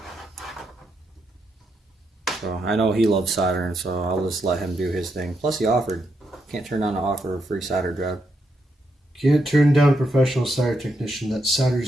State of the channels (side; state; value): both; normal; correlation 0.81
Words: So I know he loves soldering, so I'll just let him do his thing. Plus he offered. Can't turn down an offer of a free solder job. Can't turn down a professional solder technician that